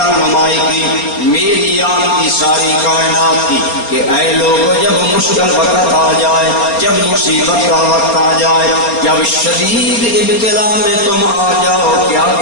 کی، میری آپ کی ساری کائنات کی کہ اے لوگوں جب مشکل وقت آ جائے، جب مصیبت کا وقت آ جائے، جب شدید ابتلا میں تم آ جاؤ کیا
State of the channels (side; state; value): right; late; 4.3 ms